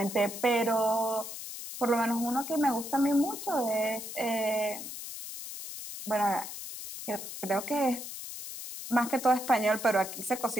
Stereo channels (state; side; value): noise; left; hiss, 9 dB below the sound